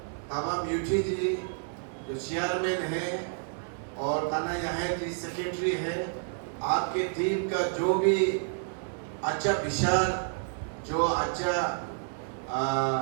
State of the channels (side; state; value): left; silent; digital silence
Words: तमाम यूटी जी जो चेयरमैन है और ताना यहाँ जी सेक्रेटरी है, आपके टीम का जो भी अच्छा विचार, जो अच्छा